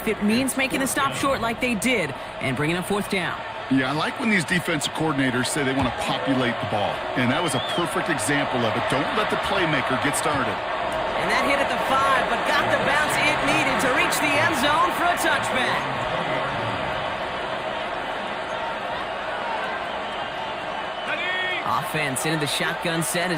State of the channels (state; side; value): identical; both; correlation 1.00